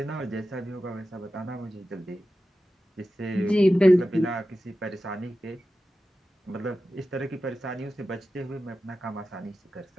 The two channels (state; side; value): normal; both; correlation 0.93